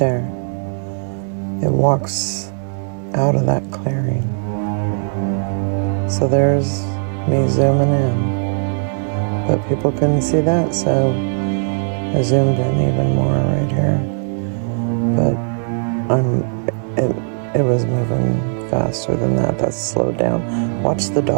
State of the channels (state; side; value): silent; left; 67 dB below the other